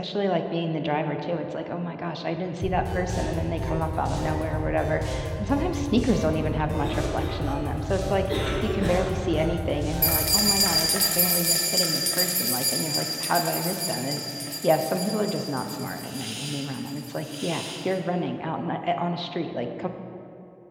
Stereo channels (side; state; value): both; identical; correlation 1.00